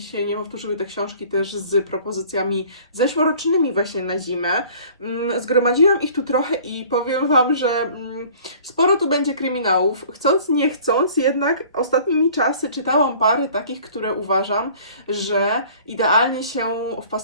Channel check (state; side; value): inverted; both; correlation -0.50